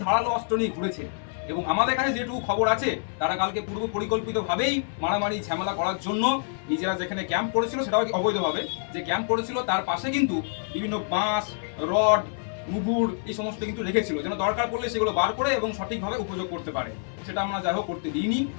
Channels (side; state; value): right; silent; 60 dB below the other